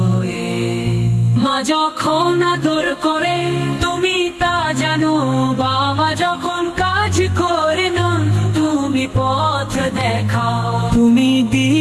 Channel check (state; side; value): identical; both; correlation 1.00